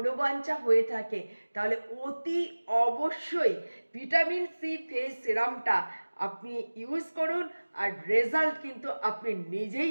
হয়ে থাকে, তাহলে অতি অবশ্যই ভিটামিন সি ফেস সিরামটা আপনি ইউজ করুন, আর রেজাল্ট কিন্তু আপনি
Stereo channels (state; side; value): inverted; both; correlation -1.00